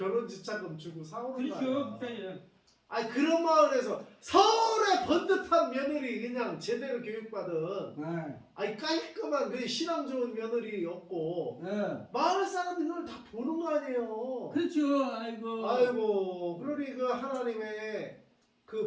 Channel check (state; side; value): identical; both; correlation 1.00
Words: 지참금 주고 사오는 거 그렇죠. 아니야? 목사님. 아니 그런 마을에서 서울의 번듯한 며느리 그냥 제대로 교육받은 예. 아니 깔끔한 그 신앙 좋은 며느리였고 예. 마을 사람들이 그걸 다 보는 거 아니에요? 그렇죠. 아이고. 아이고 그러니 그 하나님의